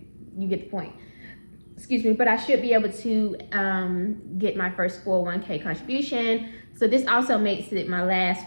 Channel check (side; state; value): both; inverted; correlation -1.00